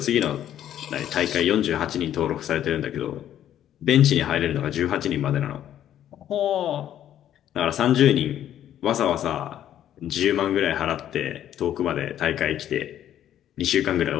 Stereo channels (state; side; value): quieter; right; 11.1 dB